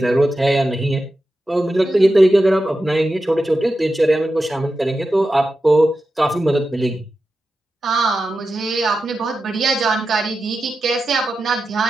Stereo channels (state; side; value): normal; both; correlation 0.91